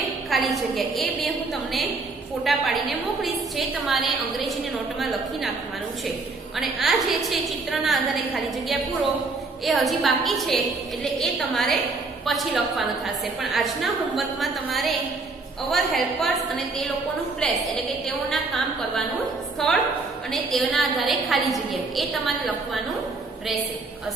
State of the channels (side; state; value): left; quieter; 3.7 dB